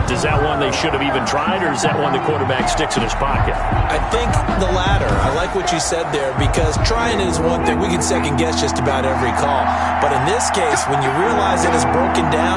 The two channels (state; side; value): identical; both; correlation 1.00